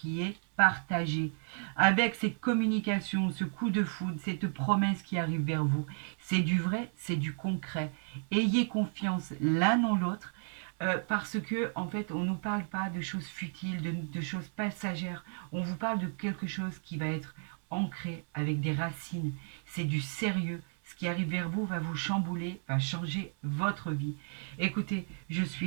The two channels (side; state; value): left; silent; 56 dB below the other